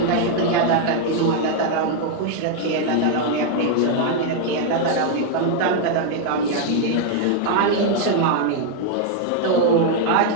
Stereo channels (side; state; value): both; different; correlation 0.00